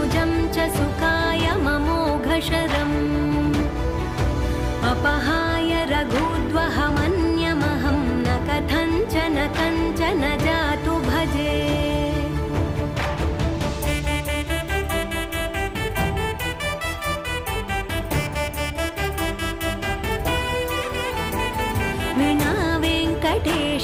च सुखाय ममोघशरम् अपहाय रघुद्वहमन्यमहं न कथञ्चन कञ्चन जातु भजे। विना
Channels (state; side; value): identical; both; correlation 1.00